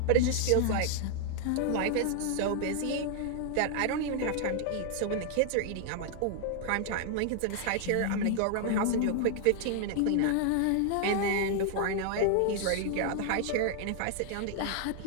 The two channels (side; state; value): both; different; correlation 0.00